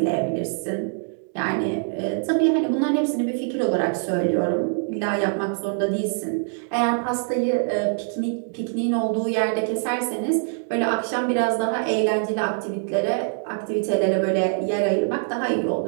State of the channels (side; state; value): left; silent; digital silence